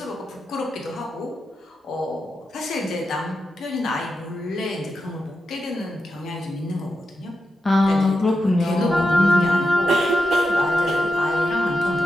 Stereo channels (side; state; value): both; normal; correlation 0.88